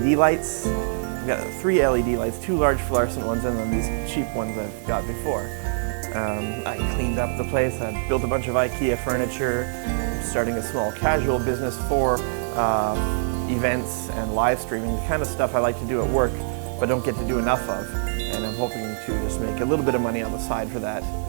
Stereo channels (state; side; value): silent; left; 62 dB below the other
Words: lights. I've got 3 LED lights, 2 large fluorescent ones and then these cheap ones I've got before. I cleaned up the place. I built a bunch of IKEA furniture, starting a small casual business for events and live streaming, the kind of stuff I like to do at work but don't get to do enough of. And I'm hoping to just make a little bit of money on the side for that.